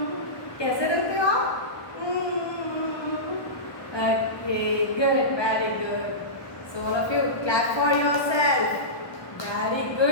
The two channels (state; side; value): late; right; 1.3 ms